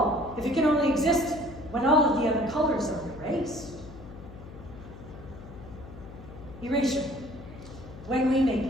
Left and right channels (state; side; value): noise; left; hum, 15 dB below the sound